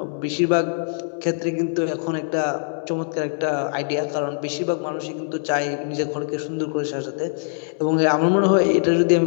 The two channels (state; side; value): silent; right; 64 dB below the other